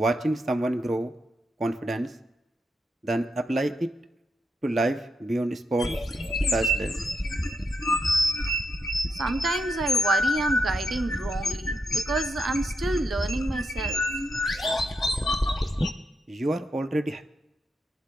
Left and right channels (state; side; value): normal; both; correlation 0.82